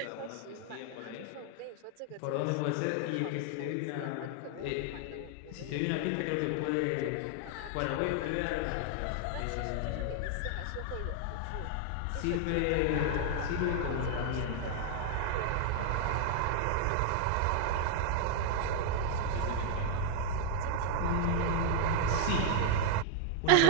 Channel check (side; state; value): both; different; correlation 0.00